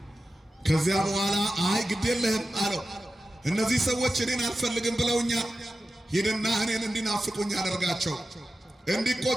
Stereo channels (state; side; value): normal; both; correlation 0.93